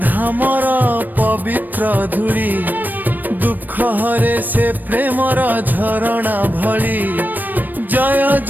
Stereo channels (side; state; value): left; late; 0.089 ms